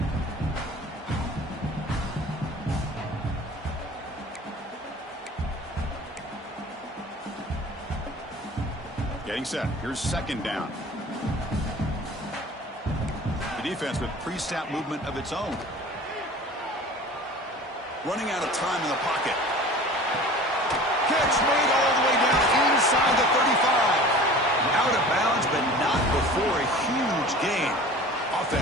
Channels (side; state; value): both; normal; correlation 0.41